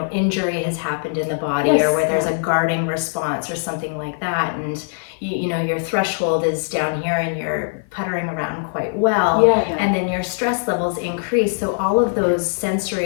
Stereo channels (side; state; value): right; silent; 55 dB below the other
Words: injury has happened in the body or where there's a guarding response or something like that. And, your threshold is down here and you're puttering around quite well. And then your stress levels increase. So all of those sensory